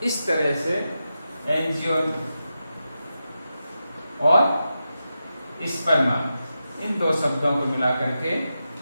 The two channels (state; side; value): inverted; both; correlation -0.89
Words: इस तरह से एंजियोन और स्पर्मा, इन दो शब्दों को मिला करके